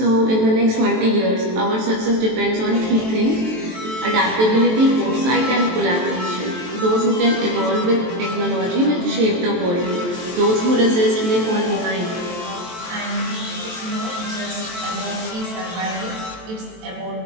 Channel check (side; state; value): left; late; 23 ms